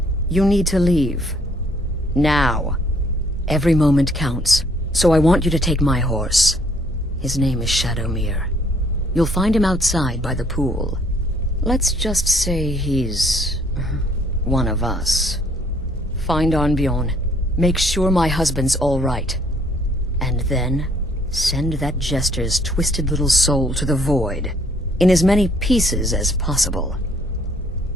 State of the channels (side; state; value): both; normal; correlation 0.63